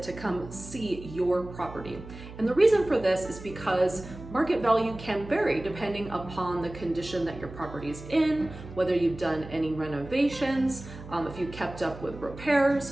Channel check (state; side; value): noise; right; hum, 14 dB below the sound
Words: to come see your property. And the reason for this is because market value can vary depending upon the condition that your property is in, whether you've done any renovations, if you kept up with